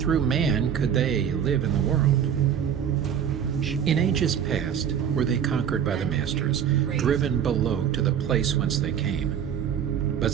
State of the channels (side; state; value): left; quieter; 8.5 dB